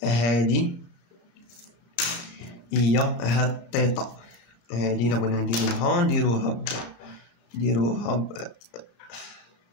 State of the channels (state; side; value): late; right; 34 ms